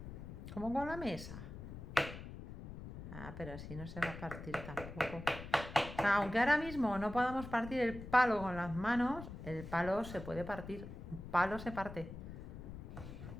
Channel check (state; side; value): noise; left; rumble, 11 dB below the sound